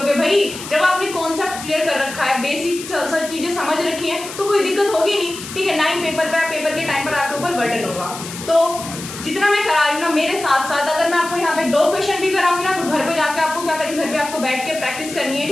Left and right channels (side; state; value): left; noise; hiss, 11 dB below the sound